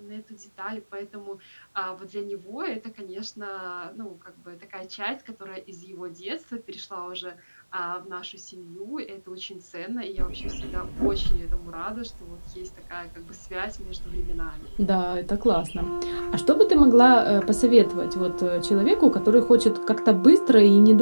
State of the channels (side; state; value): both; inverted; correlation -1.00